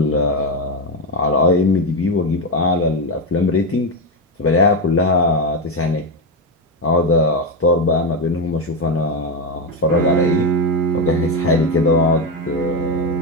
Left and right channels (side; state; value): both; normal; correlation 0.09